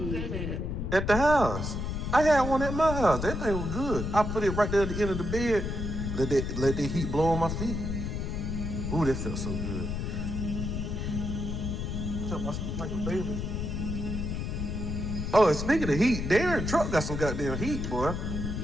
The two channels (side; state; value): left; noise; rumble, 3 dB below the sound